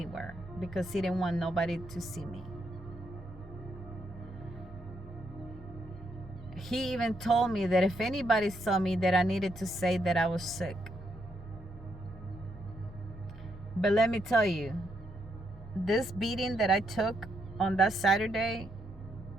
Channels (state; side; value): normal; both; correlation 0.77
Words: because he didn't want nobody to see me. He even told me that if anybody saw me, that I needed to say that I was sick. But let me tell you, this beating that I took on that Saturday